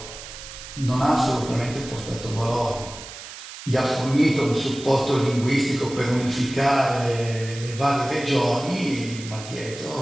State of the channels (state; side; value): noise; right; hiss, 13 dB below the sound